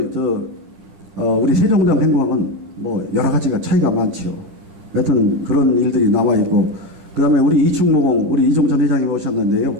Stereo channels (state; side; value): late; left; 9.9 ms